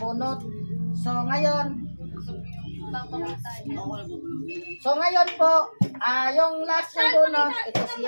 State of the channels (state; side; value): inverted; both; correlation -1.00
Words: So, ngayon, po, yung last yung bunot, ito